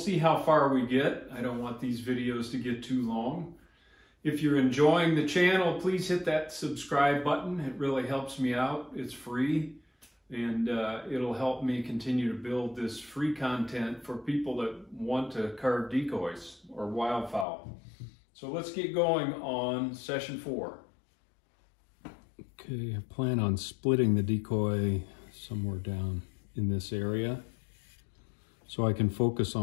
how far we get. I don't want these videos to get too long. If you're enjoying the channel, please hit that subscribe button. It really helps me out. It's free, and it'll help me continue to build this free content for people that want to carve decoys or wildfowl. So let's get going on session 4. Okay, I plan on splitting the decoy somewhere down in this area, so I can focus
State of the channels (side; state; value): right; drops out; at 17.4 s